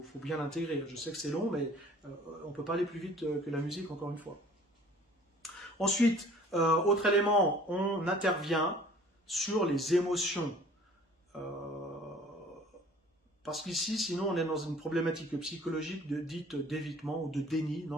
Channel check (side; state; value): both; normal; correlation 0.51